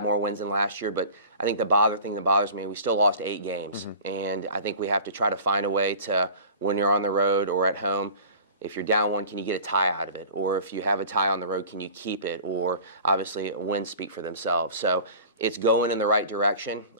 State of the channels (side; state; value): both; inverted; correlation -0.41